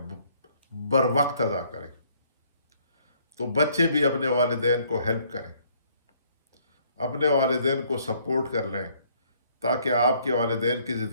بر وقت ادا کریں۔ تو بچے بھی اپنے والدین کو ہیلپ کریں، اپنے والدین کو سپورٹ کر لیں، تاکہ آپ کے والدین کی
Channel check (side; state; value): both; inverted; correlation -0.64